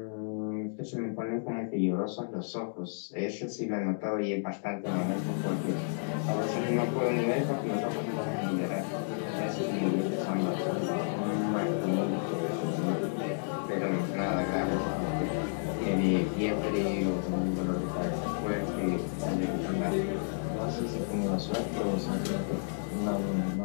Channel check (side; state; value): right; silent; digital silence